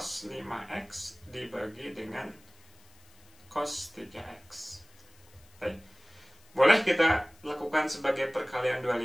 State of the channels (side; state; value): left; noise; hiss, 28 dB below the sound